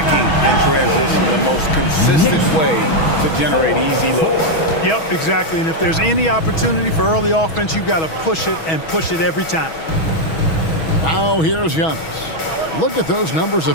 in transition, the most consistent way to generate easy looks. Yep, exactly. And if there's any opportunity for early offense, you've got to push it and push it every time. Now here's Giannis. Look at those numbers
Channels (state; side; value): late; right; 6.2 ms